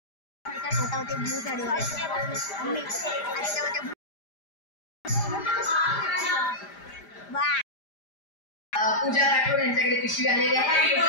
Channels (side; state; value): right; late; 5.0 ms